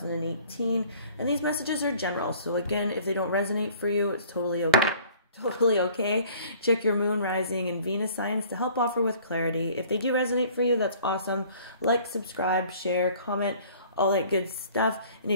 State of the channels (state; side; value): inverted; both; correlation -0.52